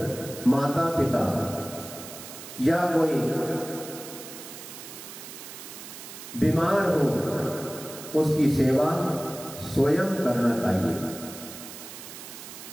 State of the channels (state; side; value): noise; right; hiss, 13 dB below the sound